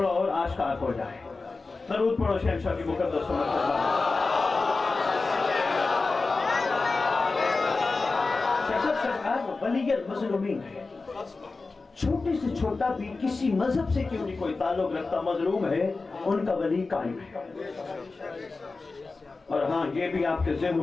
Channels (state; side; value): quieter; right; 3.8 dB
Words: اور آشکار ہو جائے۔ درود پڑھو شہنشاہ کی مقدس سرکار ولی المظلومین ہے، چھوٹے سے چھوٹا بھی کسی مذہب سے کیوں نہیں کوئی تعلق رکھتا، مظلوم ہے ان کا ولی قائم ہے۔ اور ہاں یہ بھی آپ کے